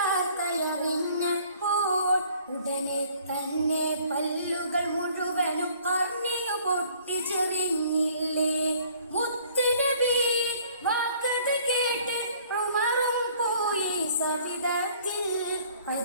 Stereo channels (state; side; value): inverted; both; correlation -0.57